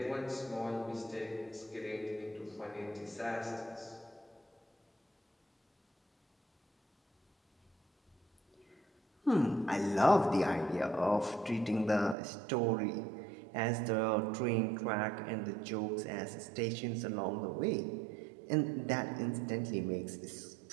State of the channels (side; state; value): left; drops out; at 12.2 s